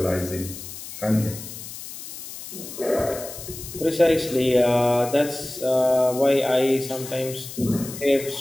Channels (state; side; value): noise; left; hiss, 12 dB below the sound